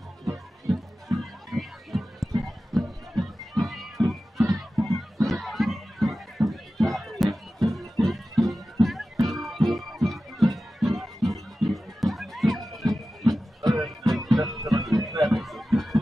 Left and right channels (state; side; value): normal; both; correlation 0.94